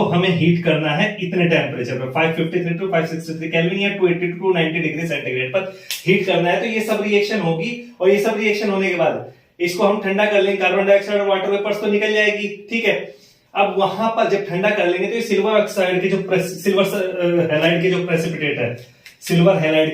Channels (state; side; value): identical; both; correlation 1.00